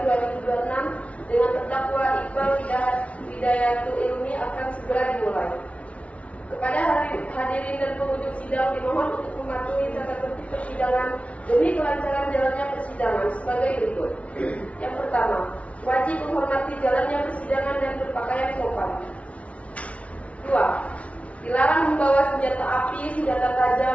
dengan terdakwa Iqbal Hidayatul Ilmi akan segera dimulai. Kepada hadirin dan pengunjung sidang dimohon untuk mematuhi tata tertib persidangan demi kelancaran jalannya persidangan sebagai berikut. Yang pertama, wajib menghormati jalannya persidangan dan berpakaian sopan. 2. Dilarang membawa senjata api, senjata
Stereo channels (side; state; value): right; late; 0.064 ms